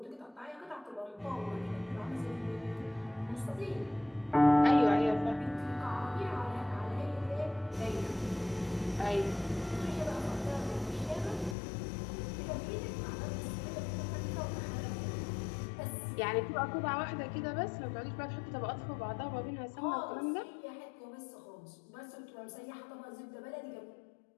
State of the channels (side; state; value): right; drops out; at 11.6 s